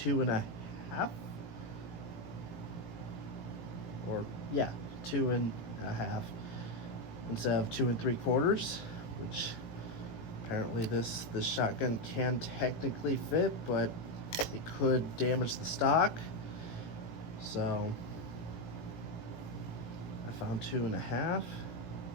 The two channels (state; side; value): late; right; 18 ms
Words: or yeah, 2.5 instead of 2 3/4, which apparently this shotgun can technically fit, but it could damage the stock. So I found 2.5.